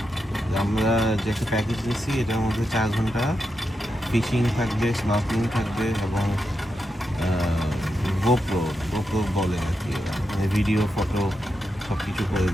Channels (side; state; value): both; normal; correlation 0.86